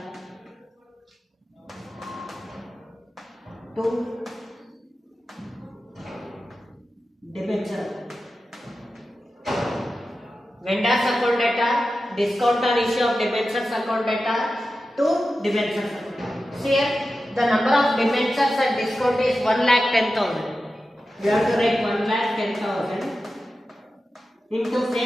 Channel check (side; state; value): both; normal; correlation 0.92